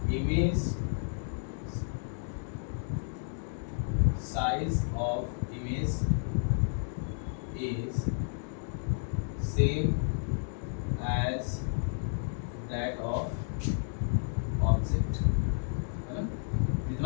image size of image is same as that of object, है ना।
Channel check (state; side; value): silent; right; digital silence